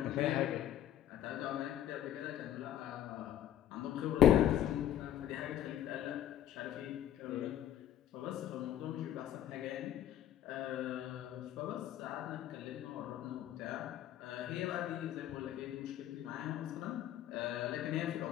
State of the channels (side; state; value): right; quieter; 11.5 dB